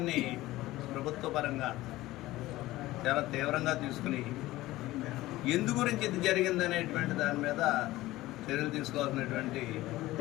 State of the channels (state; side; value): quieter; right; 17.3 dB